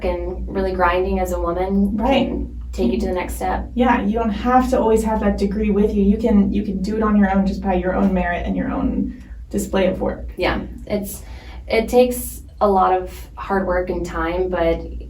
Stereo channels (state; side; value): identical; both; correlation 1.00